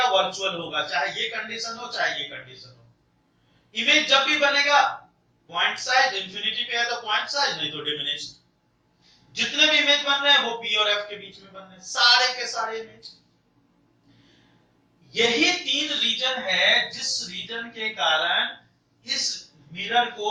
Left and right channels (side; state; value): both; identical; correlation 1.00